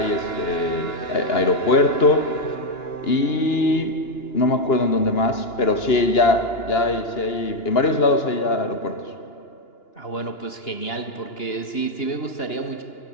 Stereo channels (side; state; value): right; late; 2.9 ms